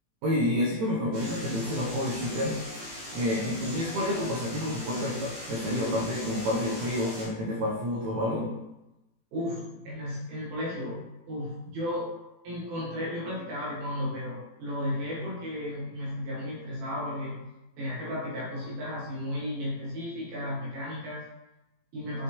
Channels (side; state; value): left; late; 18 ms